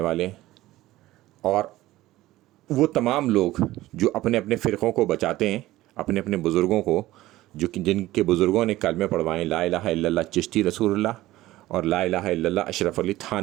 والے ہیں، اور وہ تمام لوگ جو اپنے اپنے فرقوں کو بچاتے ہیں، اپنے اپنے بزرگوں کو، جو کہ جن کے بزرگوں نے کلمے پڑھوائے لا الہ الا اللہ چشتی رسول اللہ اور لا الہ الا اللہ اشرف علی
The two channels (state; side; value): quieter; left; 16.6 dB